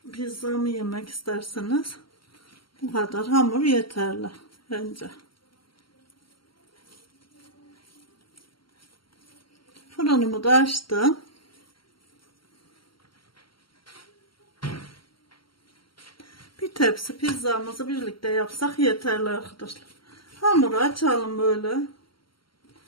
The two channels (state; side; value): late; right; 0.74 ms